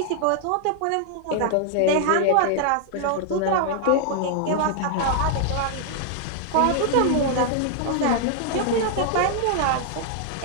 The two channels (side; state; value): both; different; correlation 0.00